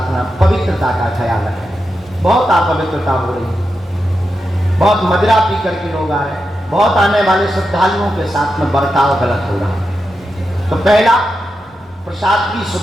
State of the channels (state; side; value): normal; both; correlation 0.88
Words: पवित्रता का ख्याल रखें। बहुत अपवित्रता हो रही है, बहुत मदिरा पी करके लोग आ रहे हैं, बहुत आने वाले श्रद्धालुओं के साथ में बर्ताव गलत हो रहा है। तो पहला, प्रसाद की